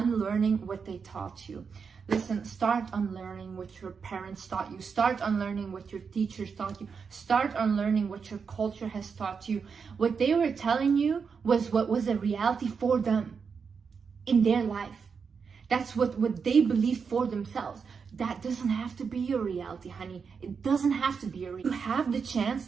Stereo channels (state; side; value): quieter; left; 5.8 dB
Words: what they taught you. Listen, start unlearning what your parents taught you. Start unlearning what your teachers taught you. Start unlearning what your culture has taught you. What they were telling you was what was a reality for them in their life. That's what they believed for themselves. That doesn't have to be your reality, honey. It doesn't have to be your reality. You have the chance